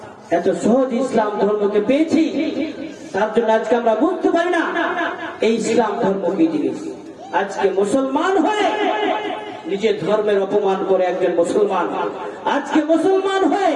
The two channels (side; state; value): both; identical; correlation 1.00